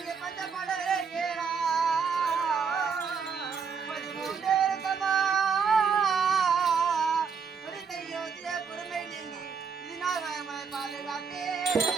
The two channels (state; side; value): quieter; left; 5.9 dB